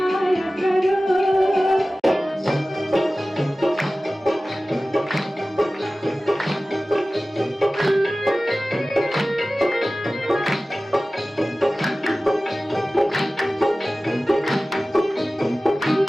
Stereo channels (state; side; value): normal; both; correlation 0.96